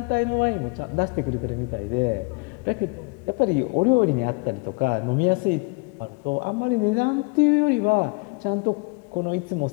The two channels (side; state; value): right; quieter; 29.7 dB